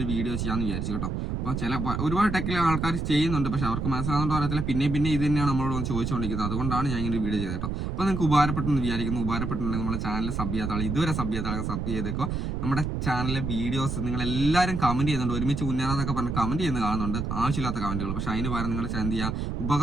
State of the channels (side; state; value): right; noise; rumble, 2 dB below the sound